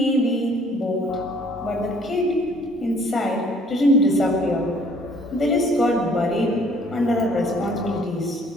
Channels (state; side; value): normal; both; correlation 0.58